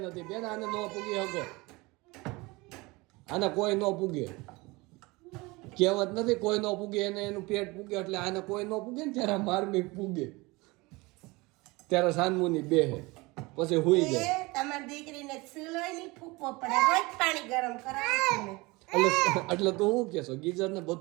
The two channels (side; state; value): left; quieter; 23.7 dB